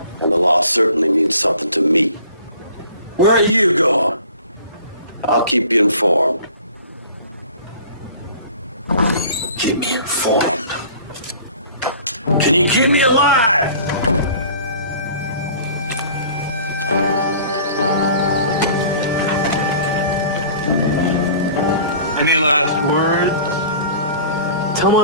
And the law certainly means something to me. Where are you going? I'll keep you informed. Keep me informed. Can you keep me alive? Any last words? Tell my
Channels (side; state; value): both; inverted; correlation -0.46